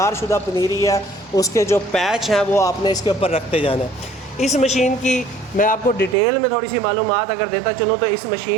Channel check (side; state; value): left; drops out; at 6.2 s